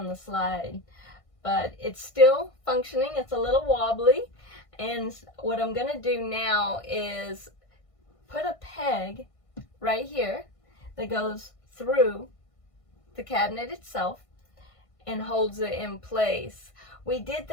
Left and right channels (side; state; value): right; late; 1.5 ms